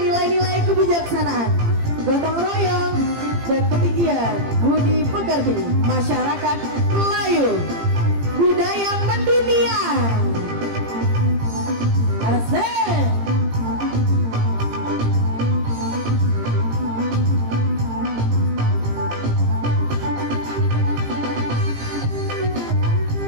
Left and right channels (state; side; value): late; left; 18 ms